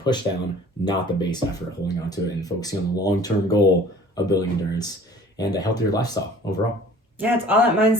down, not the base effort, holding on to it and focusing on the long-term goal of building endurance and a healthier lifestyle overall. Yeah, it's all that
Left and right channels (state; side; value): normal; both; correlation 0.49